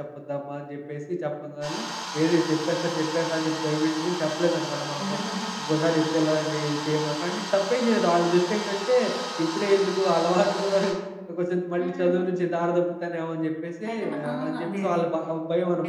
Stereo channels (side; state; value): both; identical; correlation 1.00